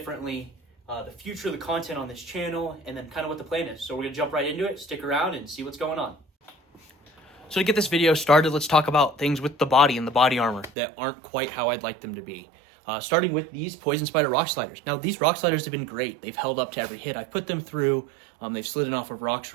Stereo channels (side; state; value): left; drops out; at 10.7 s